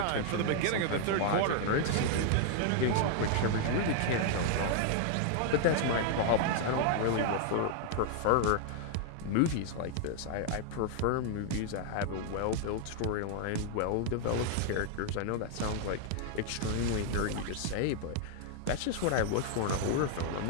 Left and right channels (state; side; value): different; both; correlation 0.00